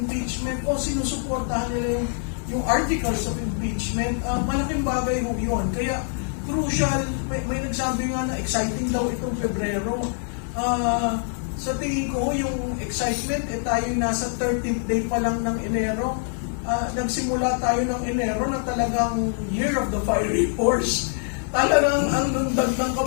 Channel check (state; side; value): silent; right; 62 dB below the other